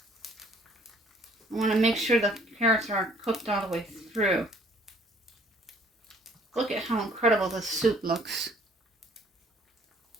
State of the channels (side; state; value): both; normal; correlation 0.59